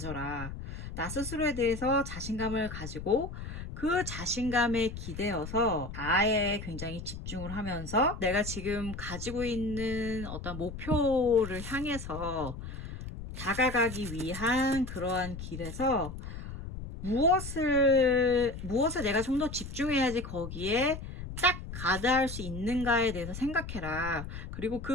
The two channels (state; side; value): noise; left; rumble, 9 dB below the sound